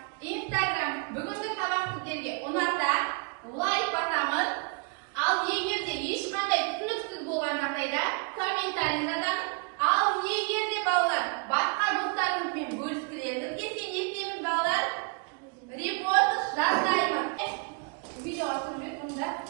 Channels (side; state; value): left; quieter; 35.4 dB